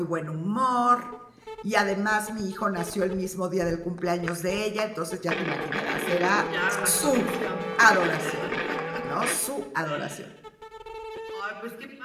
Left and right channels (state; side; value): identical; both; correlation 1.00